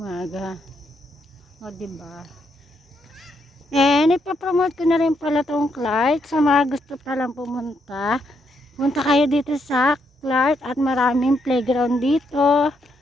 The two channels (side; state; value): both; normal; correlation 0.77